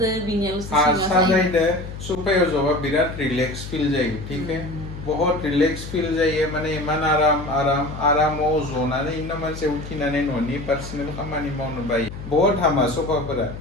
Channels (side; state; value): left; noise; hum, 11 dB below the sound